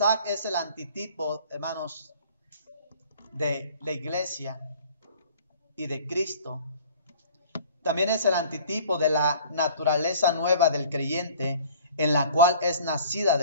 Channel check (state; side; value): inverted; both; correlation -0.49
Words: es el antitipo, hermanos, de la iglesia y de Cristo, también es el antitipo de la naturaleza nueva del creyente, en la cual es nacida